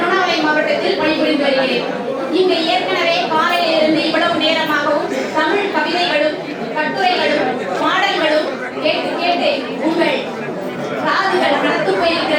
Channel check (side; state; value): both; identical; correlation 1.00